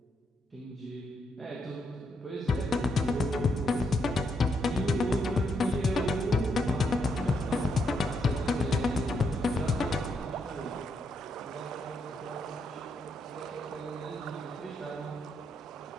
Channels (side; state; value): both; normal; correlation 0.78